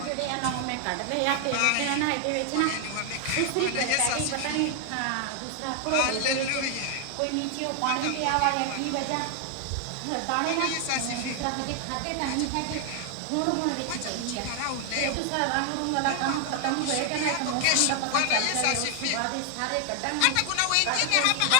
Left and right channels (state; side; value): different; both; correlation 0.00